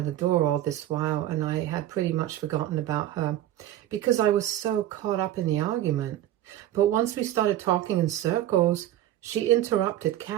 door all this while and I had pretty much forgotten about her because I was so caught up in the argument. But once we started talking in circles, she interrupted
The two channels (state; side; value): quieter; left; 12.8 dB